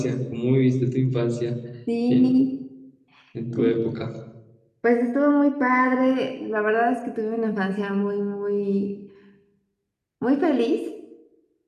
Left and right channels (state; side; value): identical; both; correlation 1.00